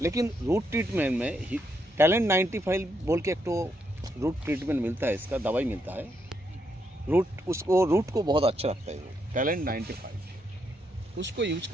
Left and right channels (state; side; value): normal; both; correlation 0.78